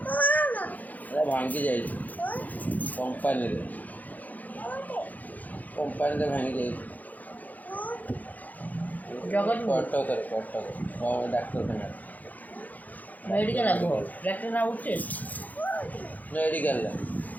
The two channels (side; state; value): right; late; 0.080 ms